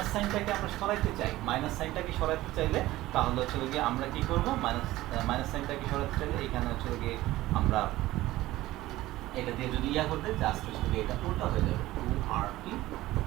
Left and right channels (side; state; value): left; quieter; 16.8 dB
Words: সাইনটাকে আমরা সরাইতে চাই, মাইনাস সাইনটাকে সরাইতে চাইলে তাহলে হচ্ছে গিয়ে আমরা কি করব, মাইনাস সাইনটাকে সরাইতে চাইলে এখানে হচ্ছে গিয়ে আমরা এটা দিয়ে যদি করতে জাস্ট হচ্ছে এটা উল্টা হয়ে যাবে 2RT